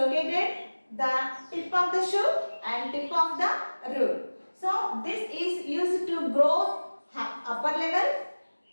the tip of the shoot and tip of the root. So this is used to grow upper level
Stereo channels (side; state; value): both; inverted; correlation -1.00